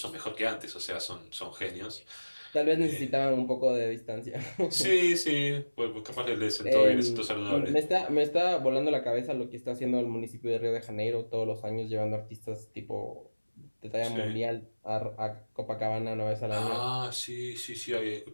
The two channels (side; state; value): both; inverted; correlation -1.00